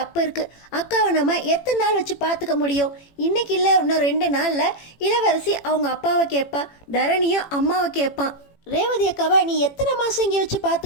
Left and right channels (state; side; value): late; right; 18 ms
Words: இருக்குது, அக்காவை நம்ம எத்தனை நாள் வச்சு பார்த்துக்க முடியும், இன்றைக்கி இல்லை இன்னும் 2 நாளில் இளவரசி அவங்க அப்பாவை கேட்பா, தரணியும் அம்மாவை கேட்பான். ரேவதி அக்காவை நீ எத்தனை மாதம் இங்கே வச்சு